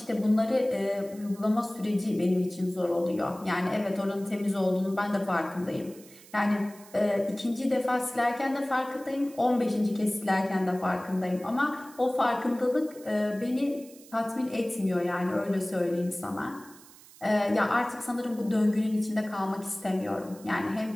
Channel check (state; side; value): noise; right; hiss, 22 dB below the sound